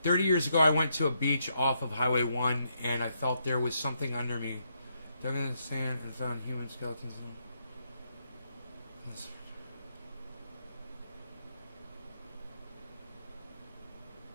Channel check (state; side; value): inverted; both; correlation -0.78